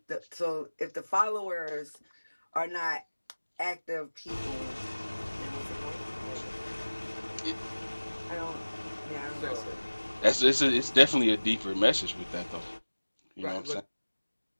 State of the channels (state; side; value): inverted; both; correlation -1.00